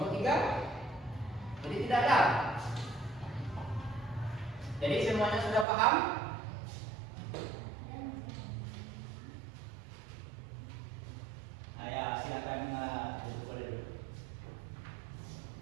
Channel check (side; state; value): left; drops out; at 5.7 s